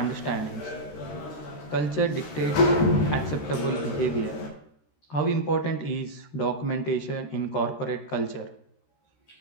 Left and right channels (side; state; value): right; late; 13 ms